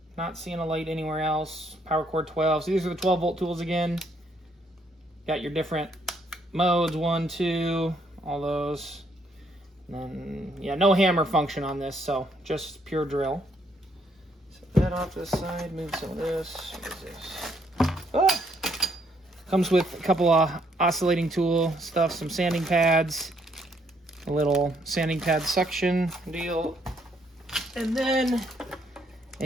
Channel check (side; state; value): both; normal; correlation 0.70